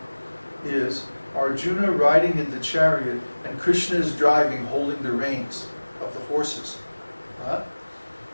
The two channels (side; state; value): both; inverted; correlation -1.00